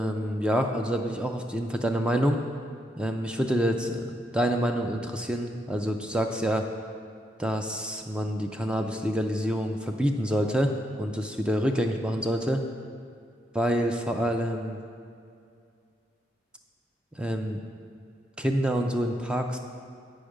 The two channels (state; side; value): normal; both; correlation 0.80